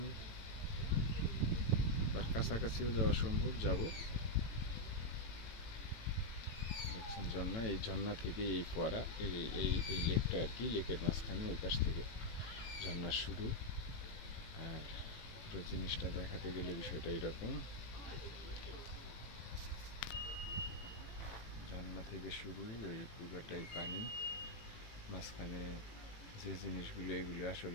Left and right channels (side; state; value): right; late; 18 ms